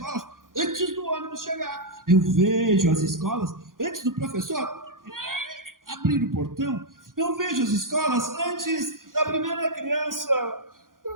antes do ônibus chegar. Eu vejo as escolas antes do professor abrir o portão. Eu vejo as escolas antes da primeira criança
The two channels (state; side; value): late; left; 0.90 ms